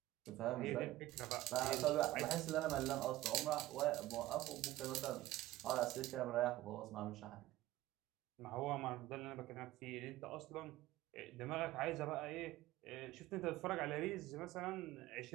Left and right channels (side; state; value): left; quieter; 16.5 dB